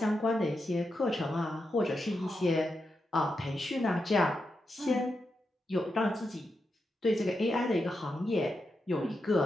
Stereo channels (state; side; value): normal; both; correlation 0.86